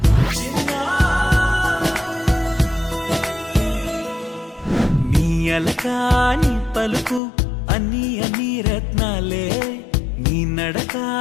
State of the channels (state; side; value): drops out; right; at 7.2 s